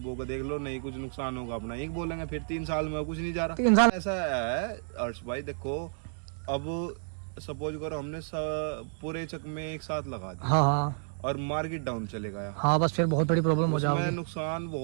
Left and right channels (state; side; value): silent; left; digital silence